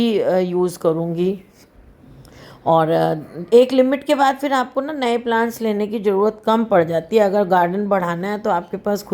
यूज़ करूँगी। और एक लिमिट के बाद फिर आपको ना नए प्लांट्स लेने की ज़रूरत कम पड़ जाती है। अगर गार्डन बढ़ाना है तो आपके पास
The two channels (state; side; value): identical; both; correlation 1.00